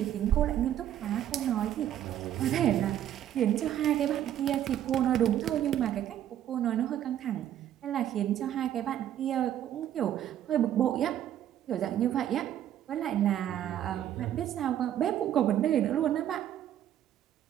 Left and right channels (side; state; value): left; quieter; 11.2 dB